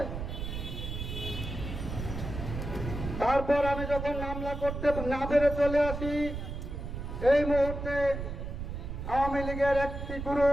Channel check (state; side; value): noise; right; rumble, 6 dB below the sound